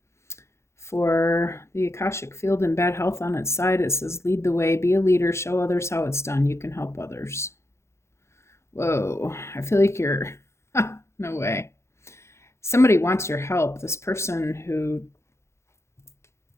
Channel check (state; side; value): late; right; 0.13 ms